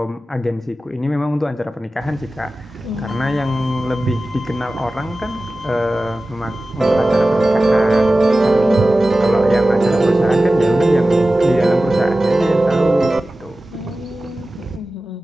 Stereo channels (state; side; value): normal; both; correlation 0.96